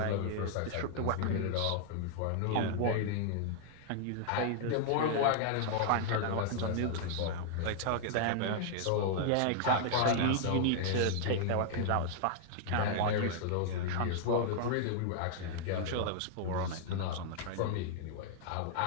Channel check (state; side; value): different; both; correlation -0.01